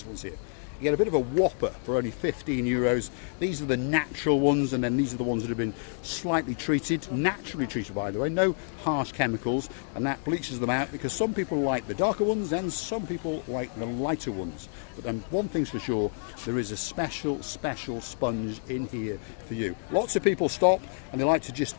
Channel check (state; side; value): silent; right; 59 dB below the other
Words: ones here. You get a bit of a whopper for only 15 euros. These are the natural ones, and then these are the ones that have been slightly treated, naturally treated, by the way, no harsh chemicals, and that bleaches them out because some people like the darker ones and some people like the lighter ones. But then one thing's for sure, there is a special sponge in here for you. Lots of people stop and they like to